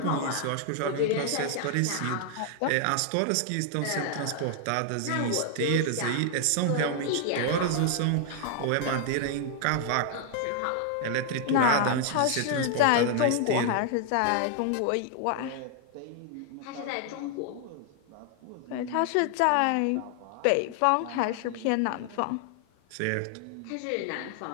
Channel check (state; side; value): different; both; correlation 0.00